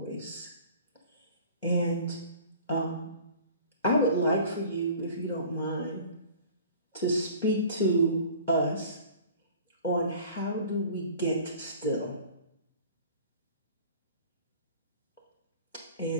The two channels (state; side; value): inverted; both; correlation -0.45